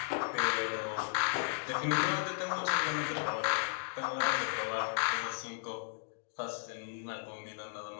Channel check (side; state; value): right; silent; digital silence